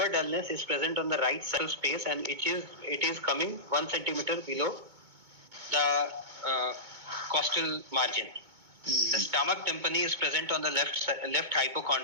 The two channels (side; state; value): left; late; 2.2 ms